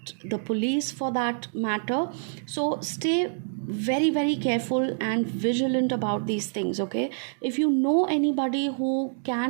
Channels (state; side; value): silent; left; digital silence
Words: the police for that matter. So stay very very careful and vigilant about these things. Okay, if you know anybody who